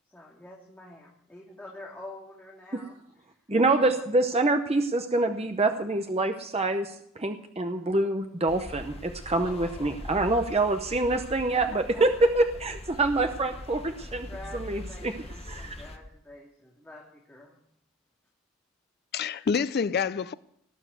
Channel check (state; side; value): normal; both; correlation 0.43